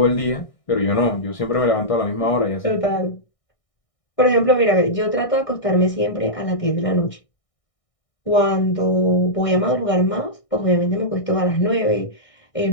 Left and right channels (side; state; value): right; late; 1.6 ms